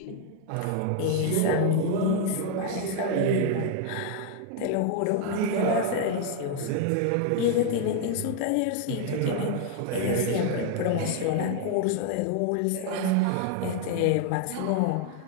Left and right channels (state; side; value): different; both; correlation 0.00